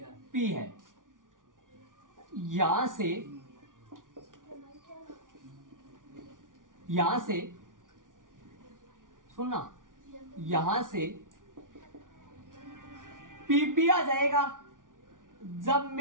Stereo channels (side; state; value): left; late; 0.88 ms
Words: पी है। यहां से सुनना, यहां से पीपी आ जाएगा जब